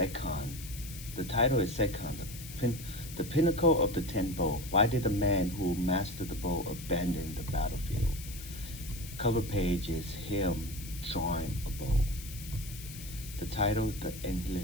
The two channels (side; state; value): left; noise; hiss, 13 dB below the sound